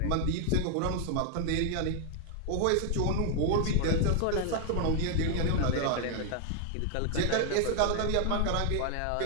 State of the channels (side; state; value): both; different; correlation 0.00